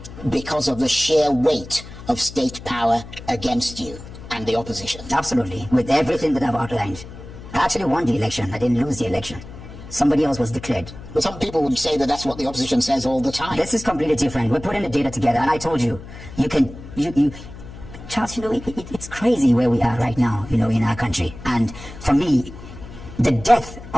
because of the sheer weight of state power against you and the opposition? Absolutely, with everything that I've outlined. I actually won the election. I didn't lose the election. Somebody else was declared. But some people would say that that's what the opposition says all the time. This is completely different. We're putting the data together, and I told you, Charles, it's crazy where we are right now, in our country. And for me, the death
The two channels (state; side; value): noise; left; hum, 15 dB below the sound